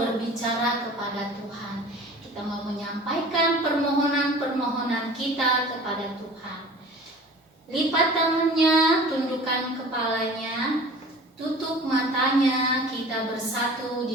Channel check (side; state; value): both; normal; correlation 0.43